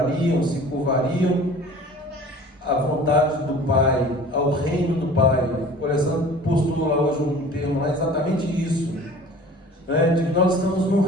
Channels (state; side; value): normal; both; correlation 0.45